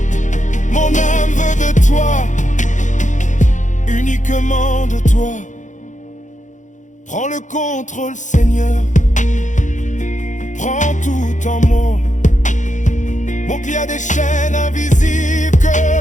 Mon âme veut de toi, uniquement de toi. Prends le contrôle, Seigneur. Prends tout en moi. Mon qu'il y a des chaînes invisibles que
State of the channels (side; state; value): right; late; 0.36 ms